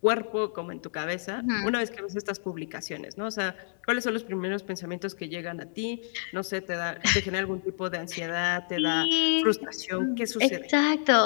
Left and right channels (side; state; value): right; silent; digital silence